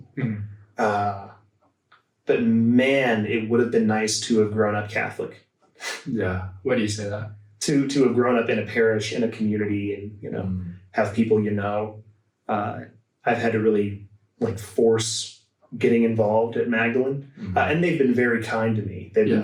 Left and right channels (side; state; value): both; identical; correlation 1.00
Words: But man, it would have been nice to have grown up Catholic. Yeah. Why do you say that? To have grown up in a parish, in a community, and, have people, I've had to really like force getting involved at Magdalene. And they've been very kind to me. They've been